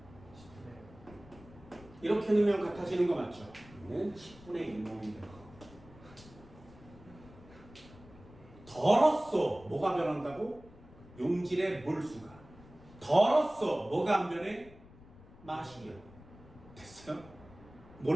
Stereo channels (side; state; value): left; noise; rumble, 21 dB below the sound